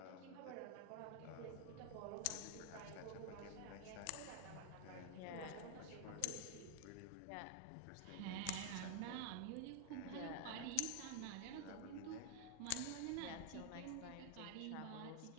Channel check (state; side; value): different; both; correlation 0.00